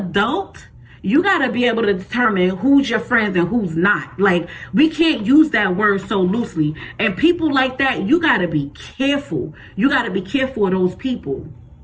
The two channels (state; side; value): identical; both; correlation 1.00